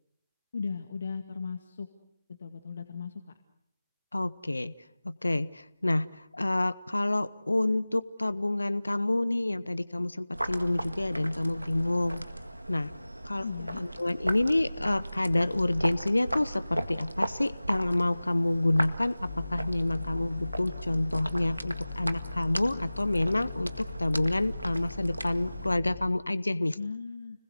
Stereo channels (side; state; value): both; inverted; correlation -0.98